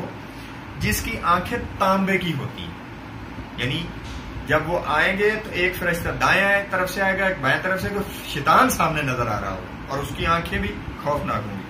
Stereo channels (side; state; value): both; identical; correlation 1.00